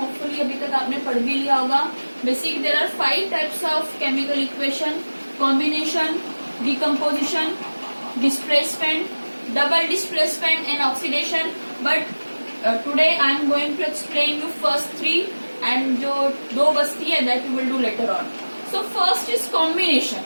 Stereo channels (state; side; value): inverted; both; correlation -1.00